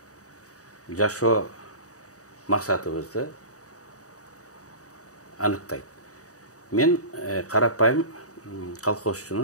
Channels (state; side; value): late; right; 0.66 ms